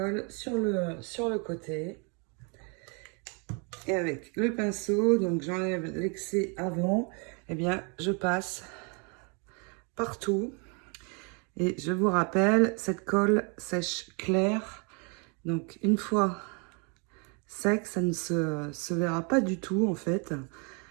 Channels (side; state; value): left; quieter; 34.9 dB